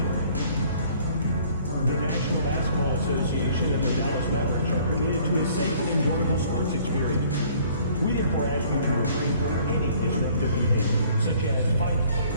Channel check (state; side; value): inverted; both; correlation -0.56